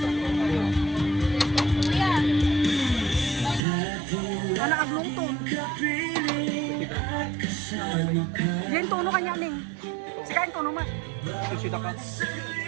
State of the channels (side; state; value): left; drops out; at 3.6 s